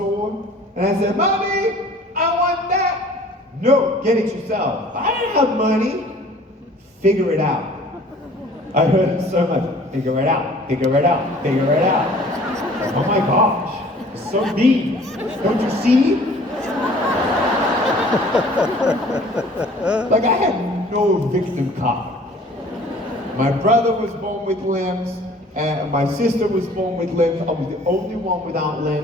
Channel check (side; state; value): both; normal; correlation 0.50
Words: and I said, Mommy, I want that. No, get it yourself. I don't have money. Figure it out. I heard it so much. Figure it out, figure it out, figure it out. Oh my gosh, it's so mean. Don't you see? Like I had no victim card. My brother was born with limbs, and my sister was born with limbs. I was the only one without